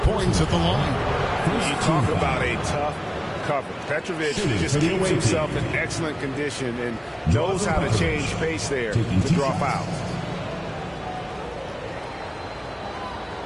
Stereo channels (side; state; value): both; identical; correlation 1.00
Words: points at the line. You talk about a tough cover. Petrovic just keeps himself in excellent condition and knows how to change pace there to draw fouls.